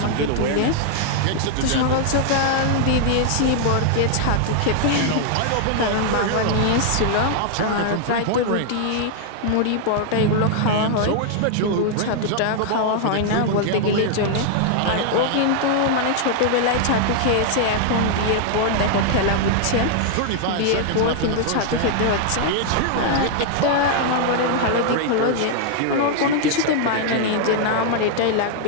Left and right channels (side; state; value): both; different; correlation 0.00